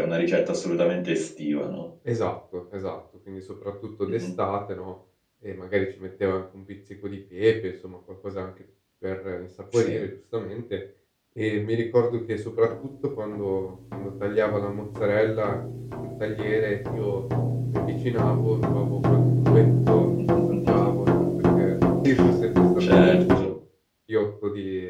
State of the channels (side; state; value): both; identical; correlation 1.00